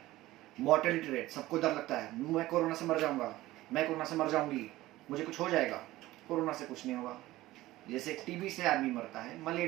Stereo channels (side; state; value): left; quieter; 17.0 dB